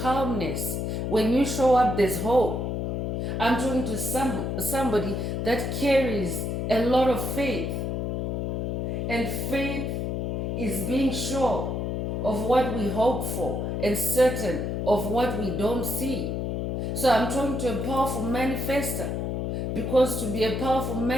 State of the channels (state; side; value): noise; left; hum, 1 dB below the sound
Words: When you show up, there's hope. I'm talking to somebody that carries a lot of faith. And faith is being sure of what we hope for and certain of what we don't see. So I'm talking to a powerful manifester. Because to be a powerful